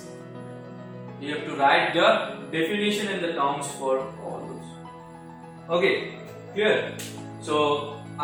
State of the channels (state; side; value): identical; both; correlation 1.00